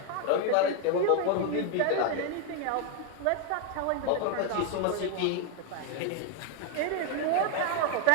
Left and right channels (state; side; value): different; both; correlation 0.01